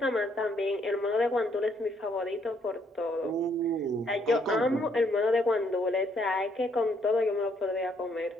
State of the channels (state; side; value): normal; both; correlation 0.70